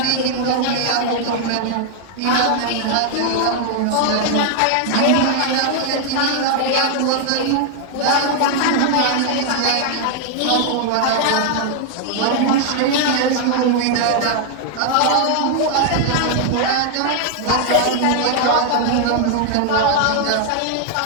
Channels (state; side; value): different; both; correlation 0.00